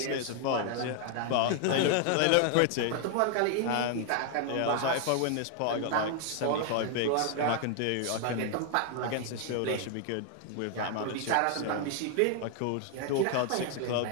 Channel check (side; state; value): both; different; correlation 0.00